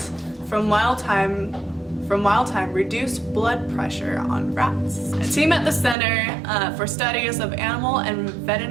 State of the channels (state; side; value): drops out; left; at 6.0 s